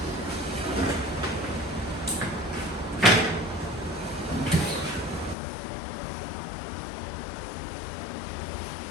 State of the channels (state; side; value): drops out; right; at 5.4 s